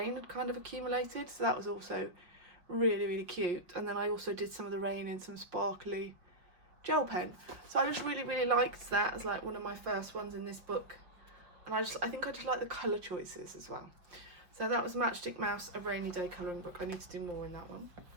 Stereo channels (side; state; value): left; late; 5.3 ms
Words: had kind of accumulated. So that was also really, really cute. And then I also did some of the rain in some sparkly gel pen. So I just really, really liked that as like one of my first ones in this book. And I think I just like the colour choices as well. So that was Matchstick Mouse, A Rainy Day Colouring Book. I need to do more in that one.